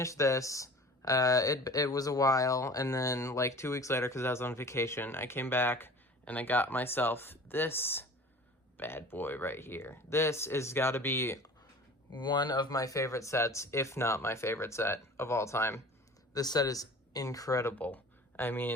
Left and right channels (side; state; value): both; normal; correlation 0.42